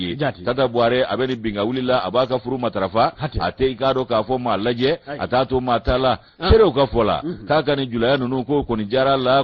tata buare abeni binga wuli la abaka furu matarafa ate ikado ka fo malaje atato matala sere ka fola kaka ni julaya nunu ko ni jara la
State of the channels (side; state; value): both; identical; correlation 1.00